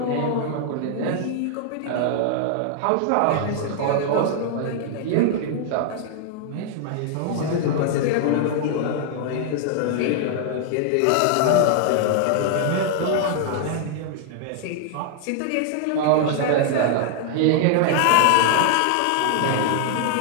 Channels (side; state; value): both; different; correlation 0.00